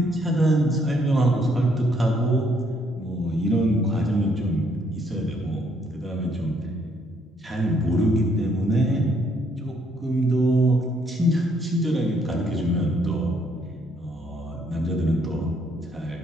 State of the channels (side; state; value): both; normal; correlation 0.69